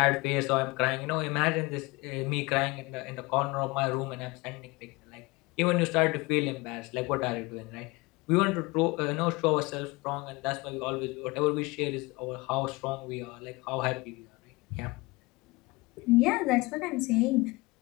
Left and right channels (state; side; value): quieter; right; 23.8 dB